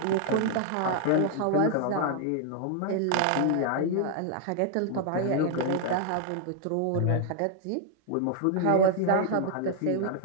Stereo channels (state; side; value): different; both; correlation 0.00